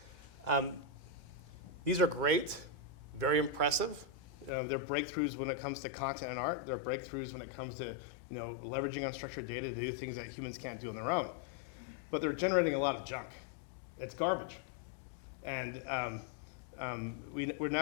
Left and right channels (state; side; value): drops out; right; at 4.5 s